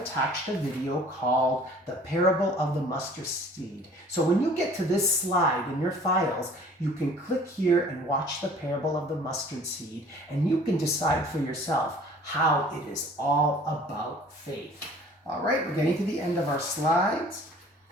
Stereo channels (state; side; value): normal; both; correlation 0.51